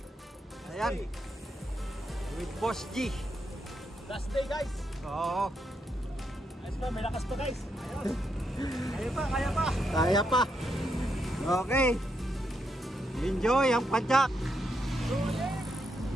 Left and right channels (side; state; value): both; normal; correlation 0.80